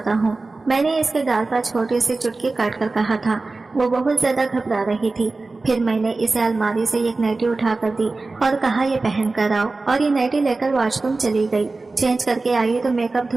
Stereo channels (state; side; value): quieter; left; 3.5 dB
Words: हूँ। मैंने इसके गाल पर छोटी सी चुटकी काट कर कहा था। वो बहुत ज्यादा घबरा रही थी। फिर मैंने इसे अलमारी से एक नाइटी उठा कर दी और कहा, ये पहन कर आओ। और ये नाइटी लेकर वॉशरूम चली गई। चेंज करके आई तो मेकअप